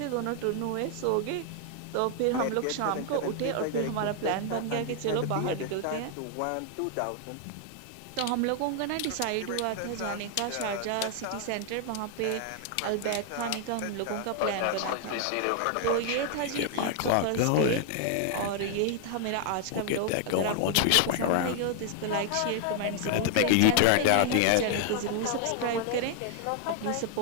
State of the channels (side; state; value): both; different; correlation 0.00